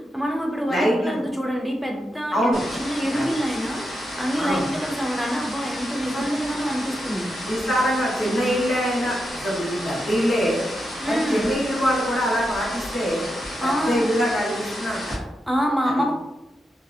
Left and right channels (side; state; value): both; normal; correlation 0.86